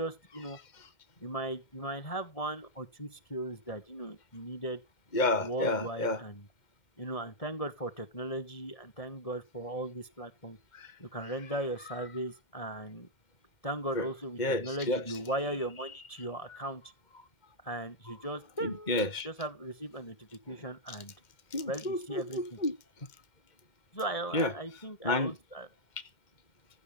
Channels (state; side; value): late; right; 2.1 ms